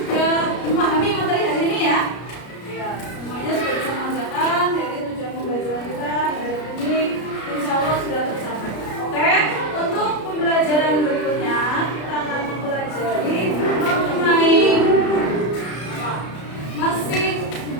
memahami materi hari ini ya? Ya, semuanya sudah bisa mengerjakan. Jadi tujuan pembelajaran kita hari ini insya Allah sudah tercapai. Oke, untuk pembelajaran berikutnya kita akan mempelajari mengenai masih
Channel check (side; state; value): right; late; 33 ms